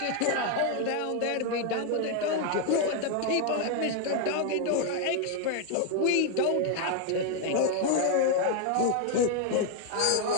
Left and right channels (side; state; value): both; different; correlation 0.01